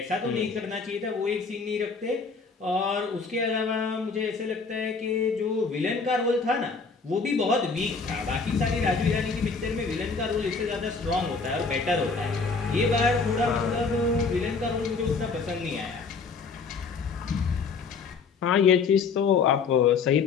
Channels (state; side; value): quieter; right; 4.8 dB